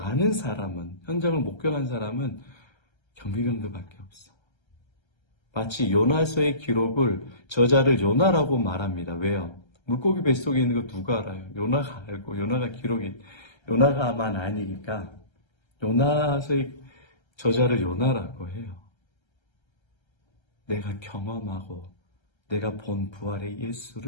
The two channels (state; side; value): late; right; 1.3 ms